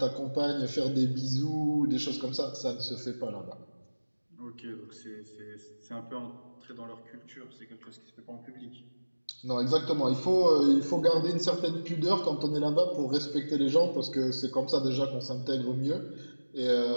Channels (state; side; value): inverted; both; correlation -1.00